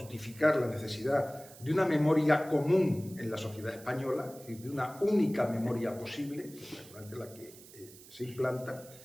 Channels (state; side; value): noise; right; hiss, 20 dB below the sound